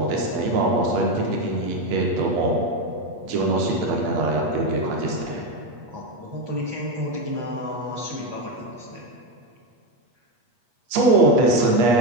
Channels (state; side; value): late; left; 8.4 ms